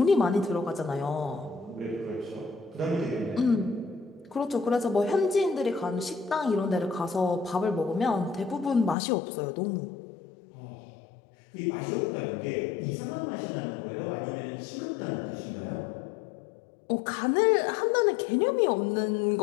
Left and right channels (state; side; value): drops out; right; at 9.0 s